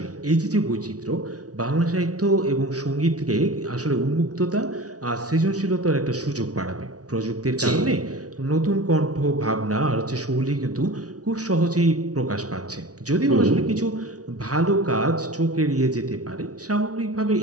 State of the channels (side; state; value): left; late; 0.68 ms